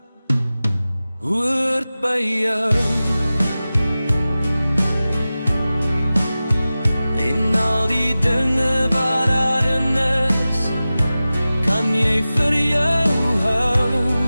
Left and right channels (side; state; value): both; inverted; correlation -0.96